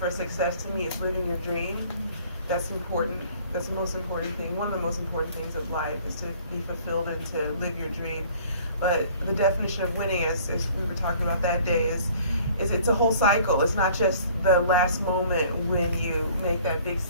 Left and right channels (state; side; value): inverted; both; correlation -0.53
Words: success to me is living your dream. That's important. That's the most important thing. One of the most important things of life is to be fulfilled and to live your dream. But the definition of winning, as we were talking about that day, is it's a whole cycle. It's not just the last moment when you make that big